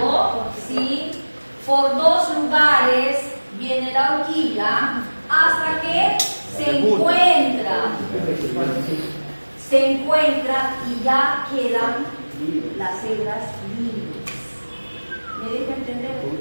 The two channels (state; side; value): inverted; both; correlation -1.00